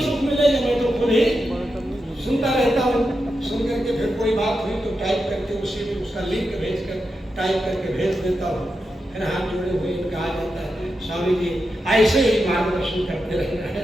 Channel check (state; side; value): normal; both; correlation 0.88